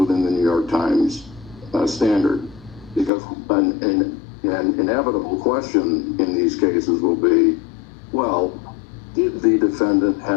the New York Times standard. Because an inevitable question in these cases will be, well, did the defendant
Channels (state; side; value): drops out; right; at 3.1 s